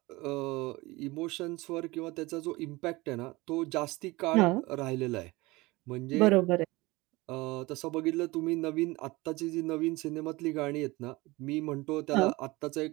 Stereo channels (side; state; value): left; quieter; 21.9 dB